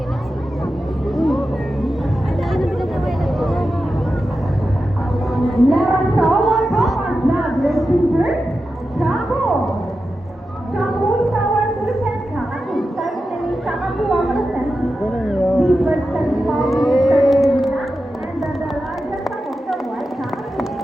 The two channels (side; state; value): both; normal; correlation 0.91